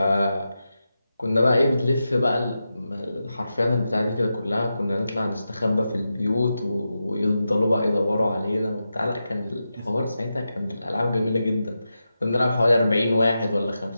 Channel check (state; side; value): inverted; both; correlation -0.90